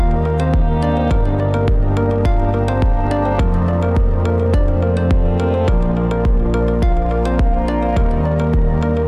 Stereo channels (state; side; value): identical; both; correlation 1.00